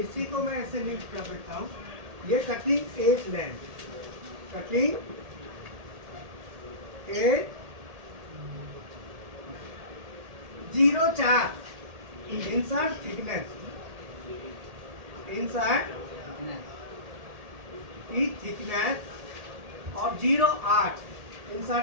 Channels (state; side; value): late; left; 1.8 ms